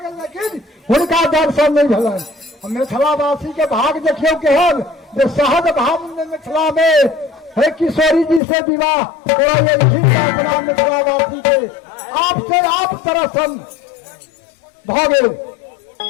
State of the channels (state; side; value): drops out; right; at 8.4 s